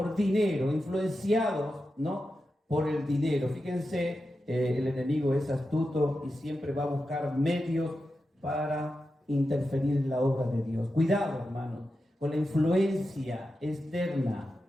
dinero, influenciados, ¿no? Por el dinero. Fíjense, el enemigo es astuto y siempre va a buscar medios para interferir en la obra de Dios. Cuidado, hermanos, con la influencia externa,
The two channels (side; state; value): both; normal; correlation 0.90